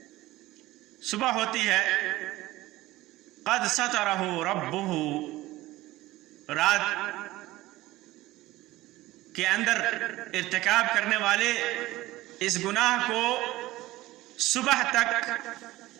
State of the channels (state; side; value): quieter; left; 17.6 dB